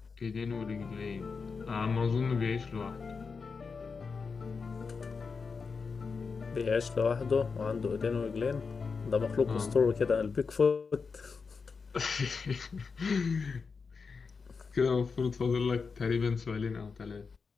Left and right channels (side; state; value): right; quieter; 5.0 dB